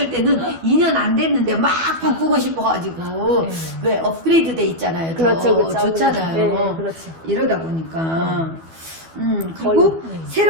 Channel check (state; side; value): late; left; 12 ms